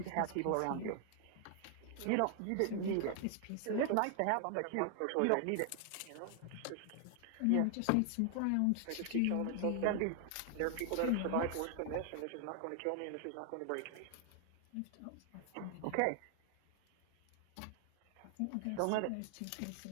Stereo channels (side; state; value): both; different; correlation 0.00